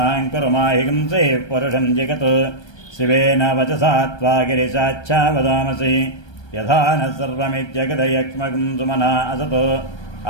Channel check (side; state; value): right; late; 1.3 ms